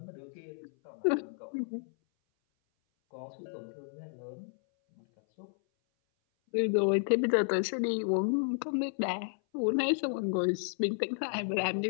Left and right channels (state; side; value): silent; right; 56 dB below the other